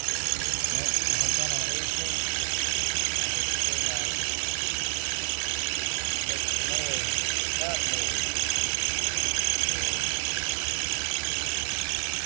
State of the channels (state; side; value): silent; left; 59 dB below the other